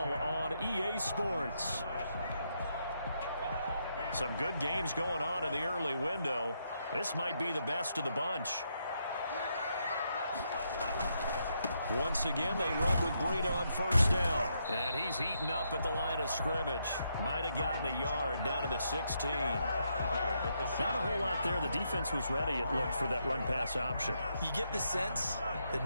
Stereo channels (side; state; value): both; inverted; correlation -0.79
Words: on EA Sports. Some good games going on in the early window. This might be the best of the bunch. Once again, they run with Breida on 1st down. And he's heating up at the line of scrimmage. Might have gotten a yard down to the 16. Not a whole lot there. The defense was ready, it looked, for that run-pass option. You get the sense that